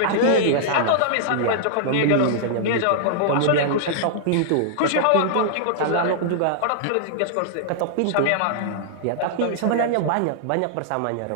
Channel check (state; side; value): different; both; correlation -0.01